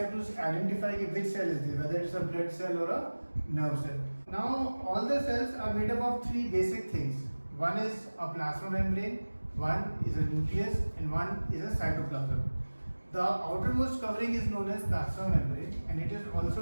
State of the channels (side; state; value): both; inverted; correlation -1.00